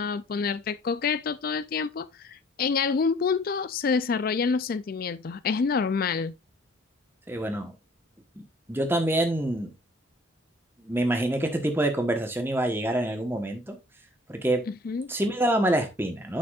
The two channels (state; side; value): normal; both; correlation 0.55